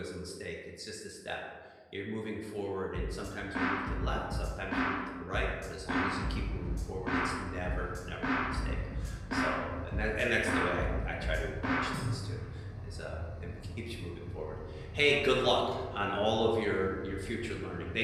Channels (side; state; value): both; identical; correlation 1.00